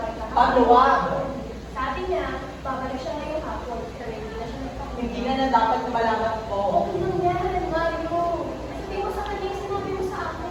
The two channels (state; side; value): identical; both; correlation 1.00